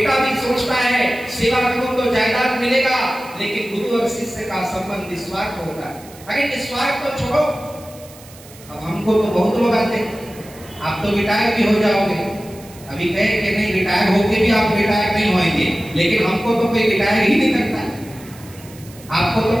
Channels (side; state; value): right; noise; hiss, 21 dB below the sound